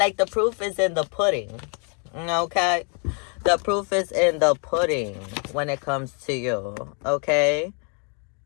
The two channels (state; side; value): quieter; right; 38.6 dB